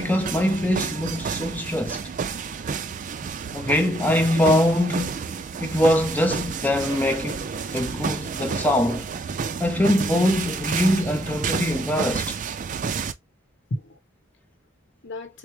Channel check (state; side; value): normal; both; correlation 0.70